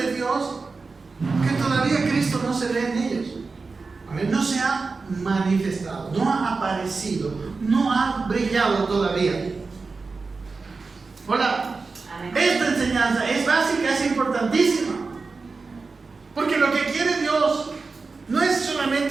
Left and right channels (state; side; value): quieter; left; 4.2 dB